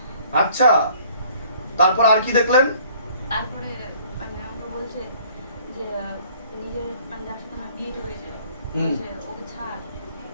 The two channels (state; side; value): inverted; both; correlation -0.57